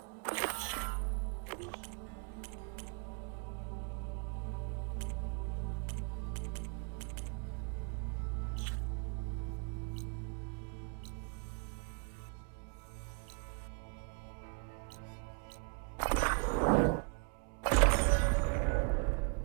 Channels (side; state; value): left; quieter; 36.3 dB